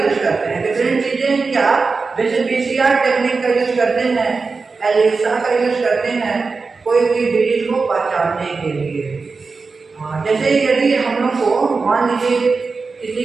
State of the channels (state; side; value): quieter; left; 4.4 dB